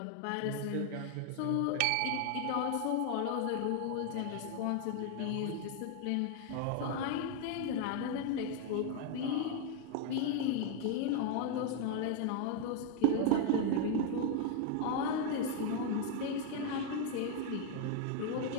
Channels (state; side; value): different; both; correlation 0.00